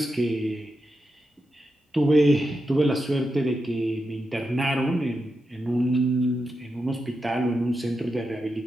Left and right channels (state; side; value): normal; both; correlation 0.88